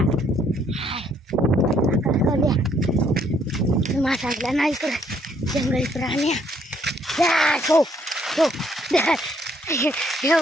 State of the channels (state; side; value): normal; both; correlation 0.68